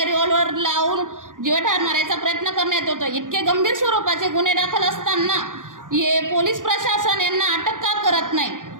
रिव्हॉल्वर लावून जीवठार मारायचा प्रयत्न करण्यात येतो. इतके गंभीर स्वरूपाचे गुन्हे दाखल असताना हे पोलीस प्रशासन यांना अटक का करत नाही?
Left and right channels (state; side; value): late; left; 0.88 ms